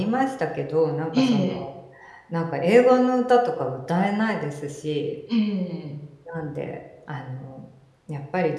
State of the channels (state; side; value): identical; both; correlation 1.00